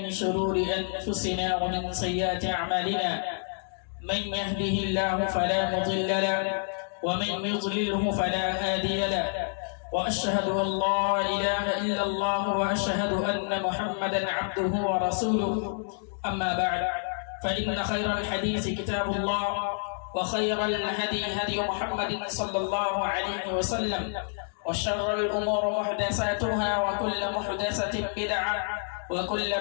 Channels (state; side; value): silent; right; digital silence